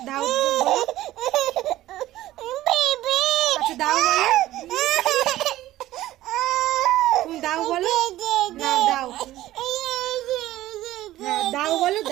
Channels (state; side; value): quieter; left; 15.2 dB